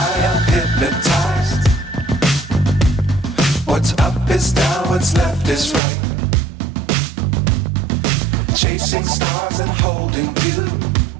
I'm hypnotized. What's up is down, what's left is right. Chasing stars and holding you.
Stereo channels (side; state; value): left; drops out; at 5.8 s